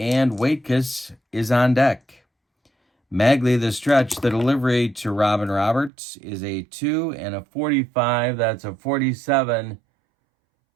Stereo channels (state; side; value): drops out; left; at 5.9 s